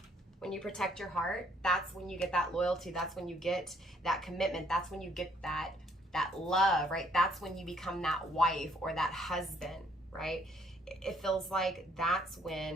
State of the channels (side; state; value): both; normal; correlation 0.66